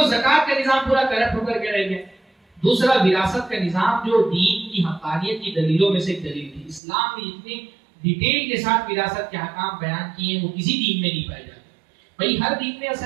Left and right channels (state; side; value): drops out; left; at 6.8 s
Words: ज़कात का निजाम पूरा करप्ट होकर के रह गया, दूसरा विरासत का निजाम जो दीन की हक़ानियत की दलीलों में से एक दलील थी। इस्लाम में इतने डिटेल के साथ विरासत के अहकाम बयान किए वो किसी दीन में नहीं पाए जाते। भाई हर दीन में